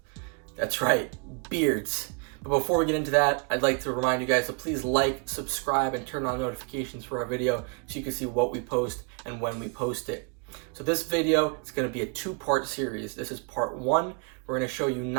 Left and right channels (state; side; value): quieter; left; 34.5 dB